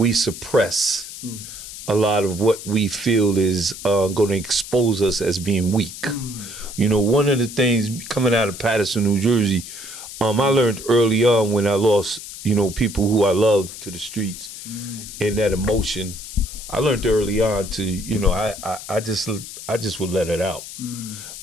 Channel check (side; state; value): left; noise; hiss, 12 dB below the sound